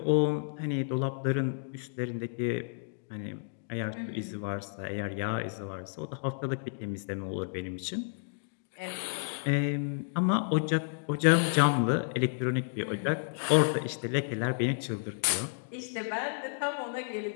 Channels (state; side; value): silent; right; digital silence